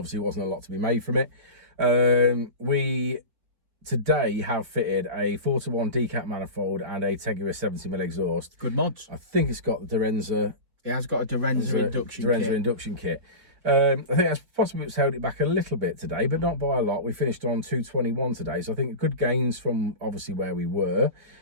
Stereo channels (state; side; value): late; left; 4.6 ms